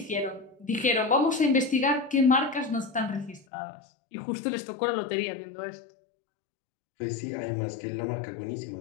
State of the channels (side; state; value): right; drops out; at 3.5 s